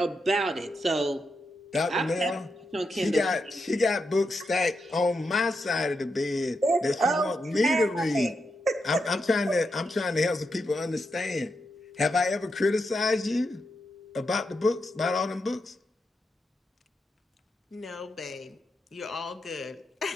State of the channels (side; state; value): both; normal; correlation 0.85